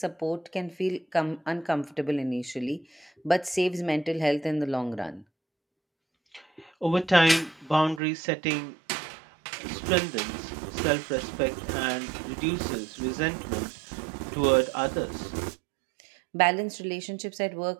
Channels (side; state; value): left; drops out; at 8.0 s